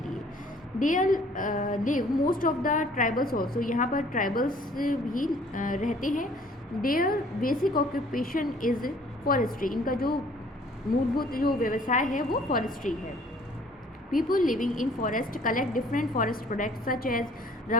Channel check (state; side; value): normal; both; correlation 0.56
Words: There live most of the tribals also, यहाँ पर ट्राइबल्स भी रहते हैं। Their basic occupation is forestry, इनका जो मूलभूत जो व्यवसाय है वो फॉरेस्ट्री है। People living in forest collect different forest products such as